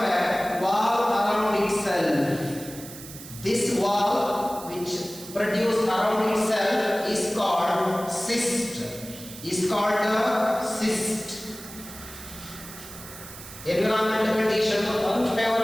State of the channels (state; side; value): noise; right; hiss, 14 dB below the sound